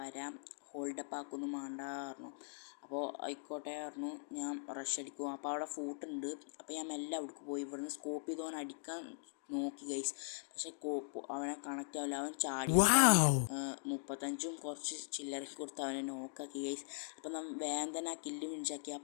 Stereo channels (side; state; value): right; silent; digital silence